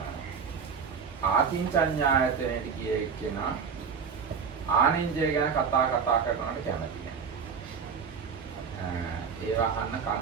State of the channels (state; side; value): quieter; left; 6.2 dB